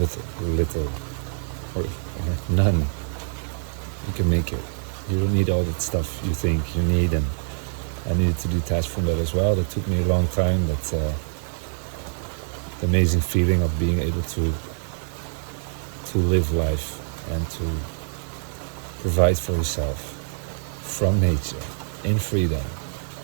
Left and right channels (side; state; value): left; silent; 57 dB below the other